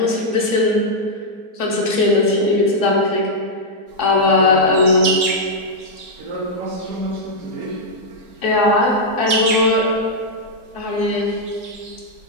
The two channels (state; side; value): late; left; 4.7 ms